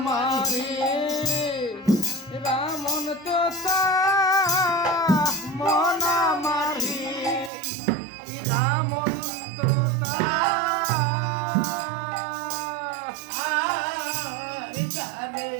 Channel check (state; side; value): drops out; left; at 7.5 s